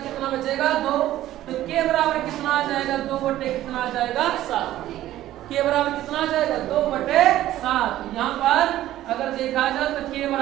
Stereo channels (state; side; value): quieter; left; 13.9 dB